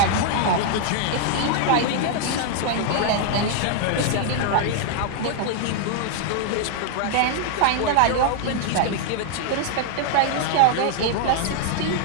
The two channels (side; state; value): both; different; correlation 0.00